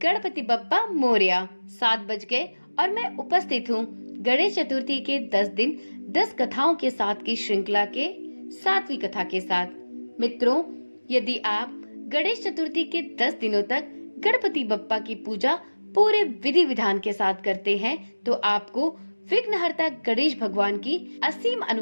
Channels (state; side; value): inverted; both; correlation -1.00